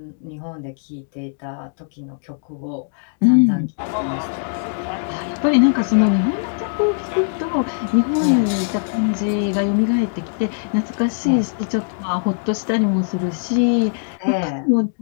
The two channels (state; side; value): silent; right; digital silence